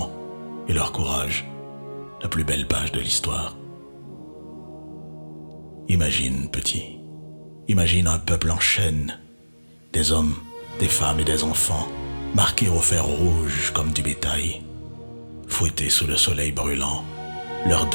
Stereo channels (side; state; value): both; inverted; correlation -1.00